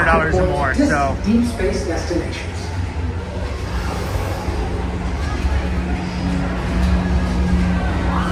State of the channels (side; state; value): both; identical; correlation 1.00